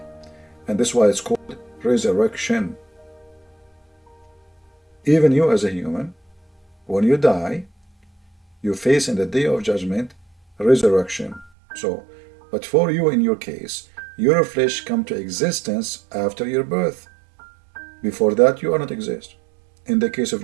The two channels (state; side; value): drops out; left; at 11.5 s